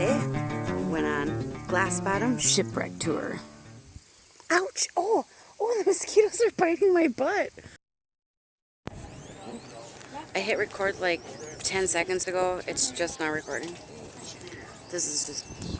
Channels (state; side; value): identical; both; correlation 1.00